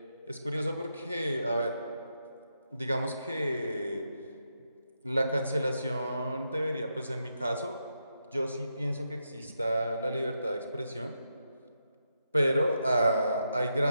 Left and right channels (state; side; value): inverted; both; correlation -0.83